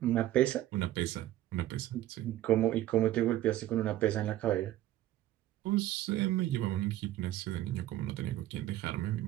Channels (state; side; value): quieter; left; 14.2 dB